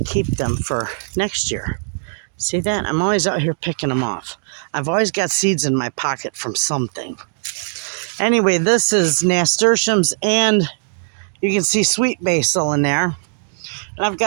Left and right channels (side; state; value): left; silent; digital silence